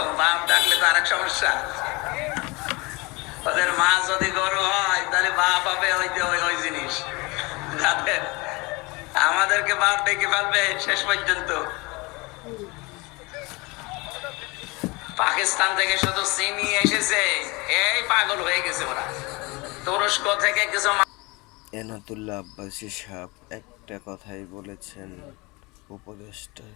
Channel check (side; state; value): right; quieter; 25.5 dB